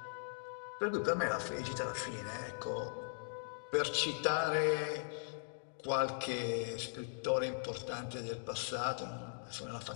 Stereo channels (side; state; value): right; silent; digital silence